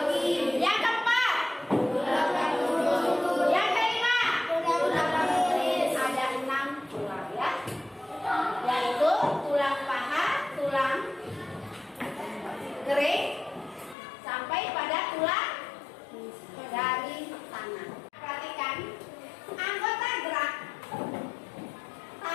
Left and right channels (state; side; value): drops out; right; at 14.0 s